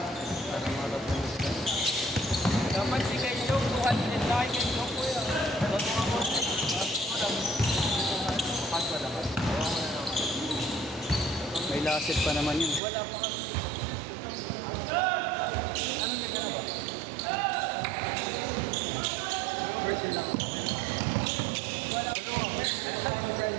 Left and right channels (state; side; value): drops out; left; at 12.8 s